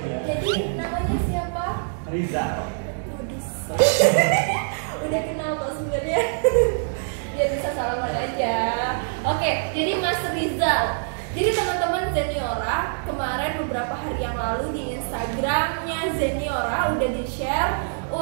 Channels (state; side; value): silent; left; digital silence